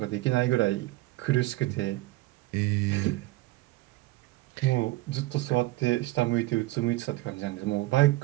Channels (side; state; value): left; quieter; 19.0 dB